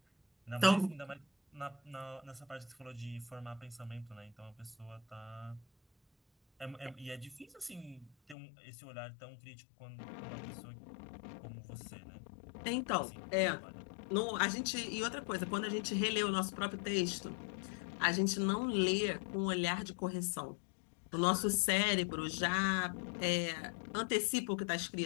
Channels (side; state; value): right; drops out; at 8.3 s